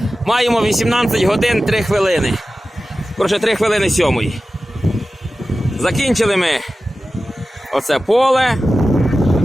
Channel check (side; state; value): both; normal; correlation 0.95